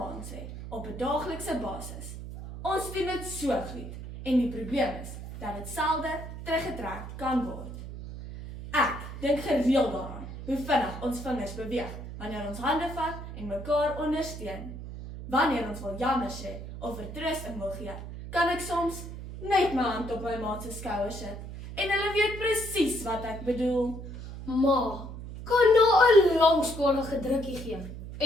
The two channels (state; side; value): noise; right; hum, 10 dB below the sound